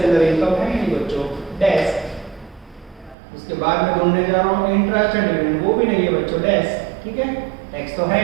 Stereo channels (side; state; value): left; drops out; at 3.2 s